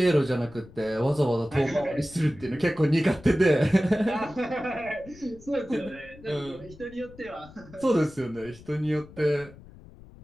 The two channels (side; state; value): left; noise; rumble, 20 dB below the sound